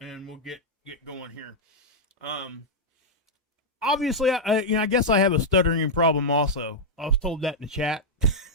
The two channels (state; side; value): normal; both; correlation -0.04